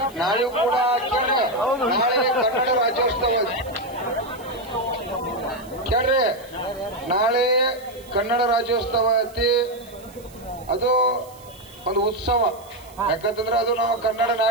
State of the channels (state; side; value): noise; right; hiss, 24 dB below the sound